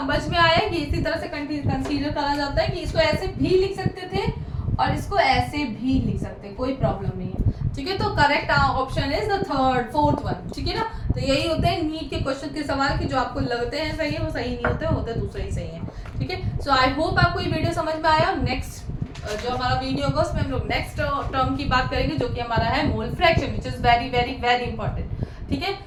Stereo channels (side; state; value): both; identical; correlation 1.00